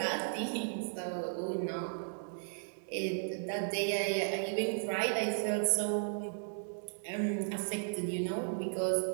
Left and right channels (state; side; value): silent; left; digital silence